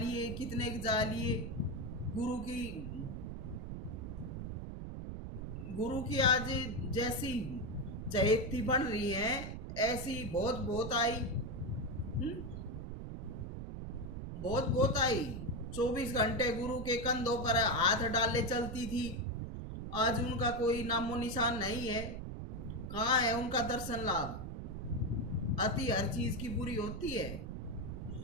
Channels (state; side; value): noise; right; rumble, 7 dB below the sound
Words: कितने के जा लिए। गुरु की आज जैसी चहेती बन रही है, ऐसी बहुत बहुत आई। बहुत बहुत आई। 24 घंटे गुरु के कंधों पर हाथ डाले चलती थी। आज उनका कोई नामो निशान नहीं है। कहाँ है उनका दर्शन लाभ? अति हर चीज की बुरी होती है।